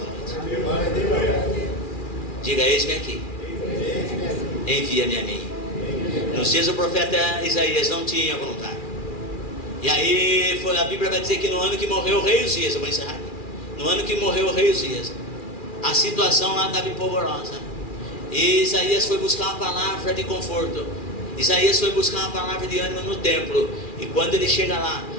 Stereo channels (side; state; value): right; late; 2.4 ms